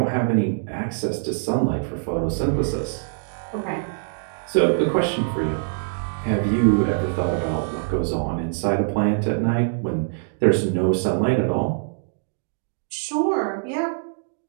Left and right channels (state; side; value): silent; left; digital silence